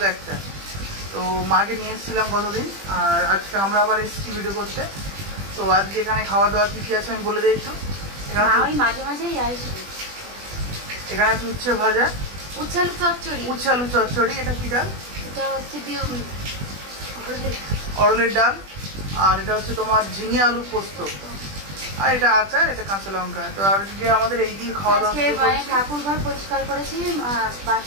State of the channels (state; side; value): late; left; 20 ms